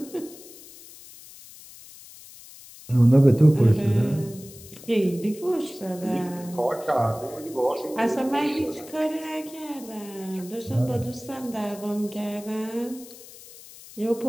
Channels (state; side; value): noise; left; hiss, 18 dB below the sound